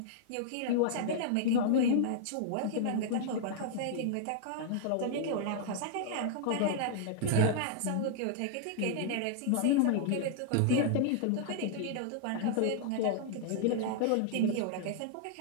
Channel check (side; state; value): both; different; correlation -0.01